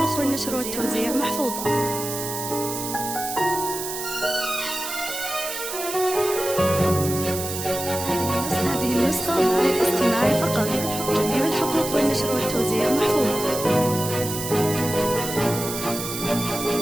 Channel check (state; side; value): noise; right; hiss, 6 dB below the sound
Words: والنشر والتوزيع محفوظة. هذه النسخة للاستماع فقط. جميع الحقوق والنشر والتوزيع محفوظة.